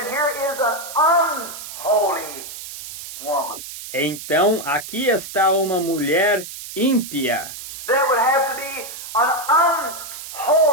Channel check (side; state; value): right; noise; hiss, 11 dB below the sound